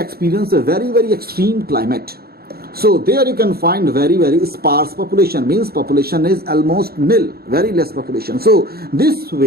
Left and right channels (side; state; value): left; late; 0.45 ms